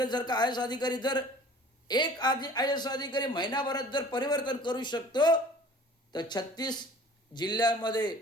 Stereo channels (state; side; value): normal; both; correlation 0.47